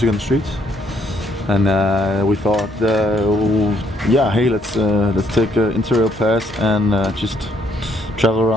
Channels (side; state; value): both; normal; correlation 0.70